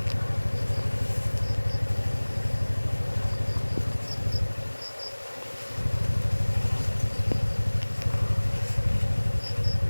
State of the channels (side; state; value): both; inverted; correlation -1.00